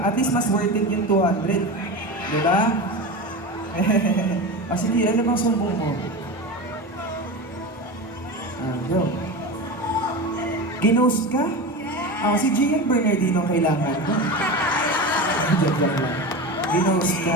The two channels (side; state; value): both; normal; correlation 0.25